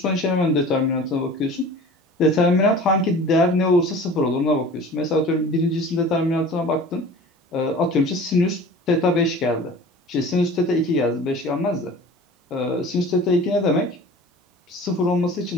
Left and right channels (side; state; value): both; normal; correlation 0.41